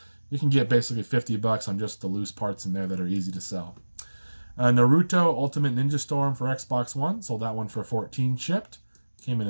You can get basically $50 on just the loose parts in there that are easy to sell. Naruto Ultimate Ninja Storm for Xbox One. Sold that one for $14 shipped. Came in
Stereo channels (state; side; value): inverted; both; correlation -1.00